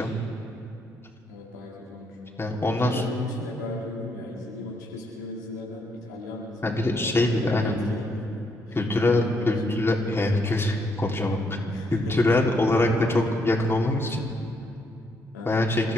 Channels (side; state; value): both; normal; correlation 0.74